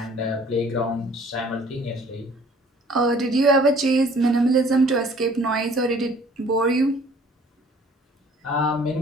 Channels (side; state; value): both; normal; correlation 0.54